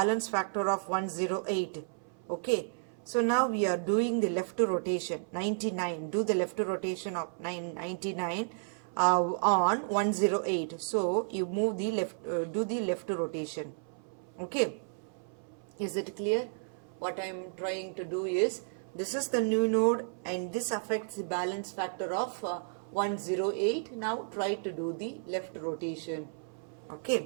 factor of 108. Okay, so now we are doing the left rotation, 99. Do the left rotation of 99 on 108. So you move the left, do the left rotation. Okay, is it clear? What I am trying to do is, this is the new node and this affects the balance factor of 108. Now try to do the left rotation.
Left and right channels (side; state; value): left; silent; 56 dB below the other